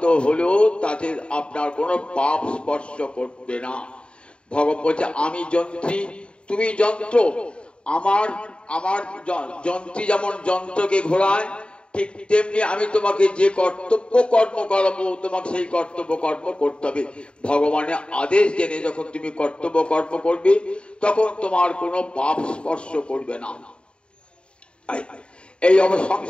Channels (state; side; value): late; right; 0.054 ms